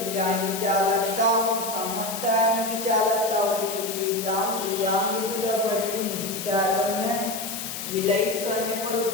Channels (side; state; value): left; noise; hiss, 7 dB below the sound